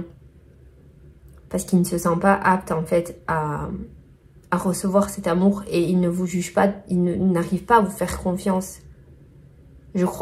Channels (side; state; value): both; identical; correlation 1.00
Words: Parce qu'il ne se sent pas apte en fait à recevoir cet amour et il ne vous juge pas, il n'arrive pas à vous faire confiance. Je